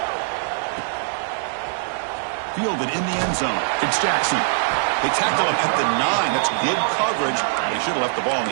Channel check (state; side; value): silent; left; digital silence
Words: Fielded in the end zone. It's Jackson. They tackle him at the 9. That's good coverage. They should have left the ball in